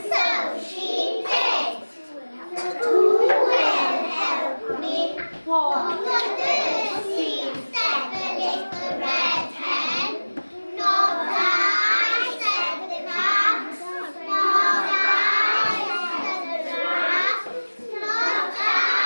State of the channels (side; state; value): both; inverted; correlation -1.00